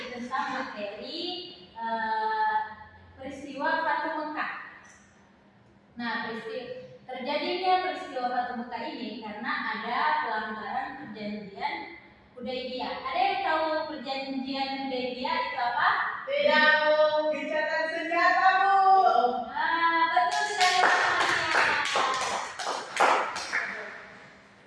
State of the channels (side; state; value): both; identical; correlation 1.00